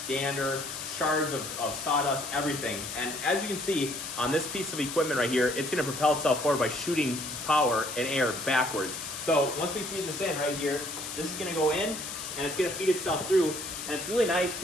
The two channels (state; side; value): noise; left; hiss, 8 dB below the sound